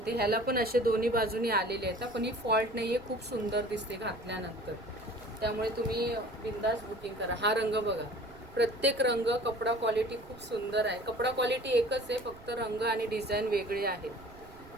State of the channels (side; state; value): right; noise; rumble, 21 dB below the sound